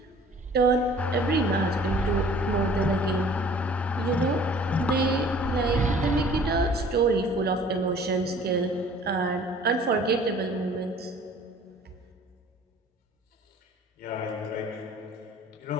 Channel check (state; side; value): normal; both; correlation 0.51